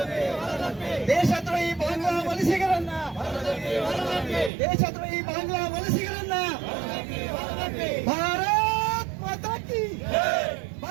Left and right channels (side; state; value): left; drops out; at 4.5 s